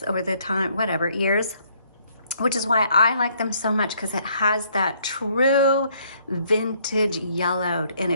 over the time, whatever, years. Which is why I like them so much, because it has that true vintage yellowed, and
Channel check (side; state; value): both; inverted; correlation -0.66